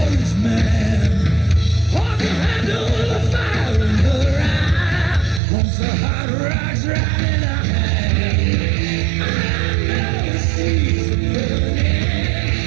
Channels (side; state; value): left; drops out; at 5.4 s